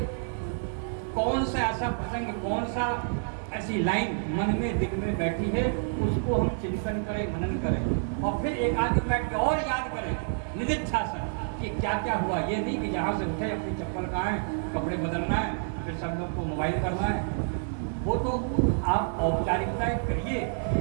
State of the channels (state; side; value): silent; left; digital silence